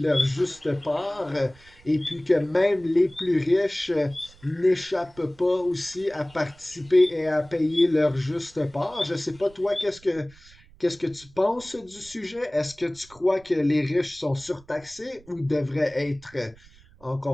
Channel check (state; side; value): noise; right; rumble, 26 dB below the sound